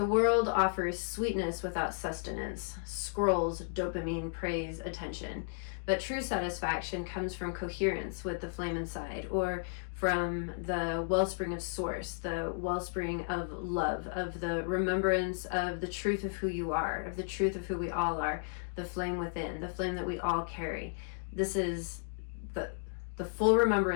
world offers sweetness without sustenance, scrolls, dopamine, praise, attention. But true satisfaction comes from coherence with the flame inside, or from the wellspring of source, the wellspring of love, of the remembrance of the truth of who you are, of the truth of who we all are, the flame within, the flame that we all carry. This is the full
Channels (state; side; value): silent; right; digital silence